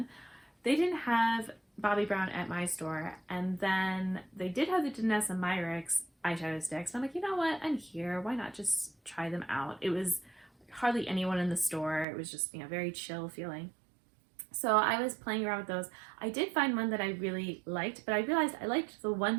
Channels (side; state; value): left; drops out; at 12.1 s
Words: They didn't have Bobbi Brown at my store, and then they did have the Danessa Myricks eyeshadow sticks. I'm like, you know what? I'm here. Why not just try them out? It was hardly anyone in the store. It was just, you know, very chill feeling. So I was playing around with those. I did find one that I really liked, but I realized I liked the